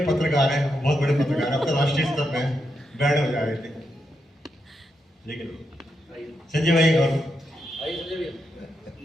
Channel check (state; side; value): normal; both; correlation 0.84